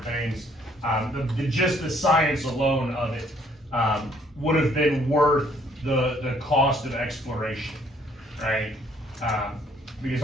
things, just the science alone of it would have been worth the cost of exploration, right? Because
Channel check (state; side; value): normal; both; correlation 0.64